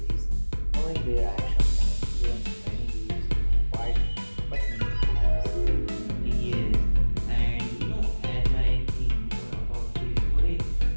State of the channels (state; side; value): inverted; both; correlation -1.00